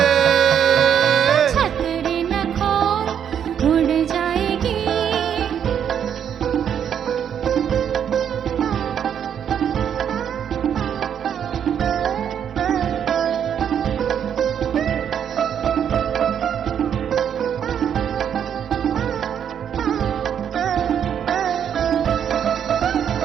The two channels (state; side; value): quieter; left; 8.6 dB